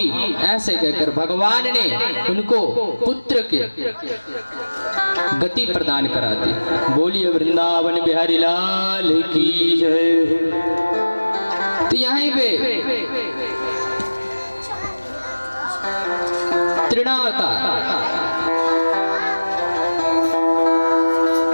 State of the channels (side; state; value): both; inverted; correlation -1.00